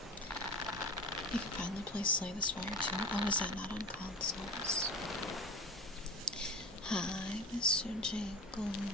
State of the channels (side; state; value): both; normal; correlation 0.34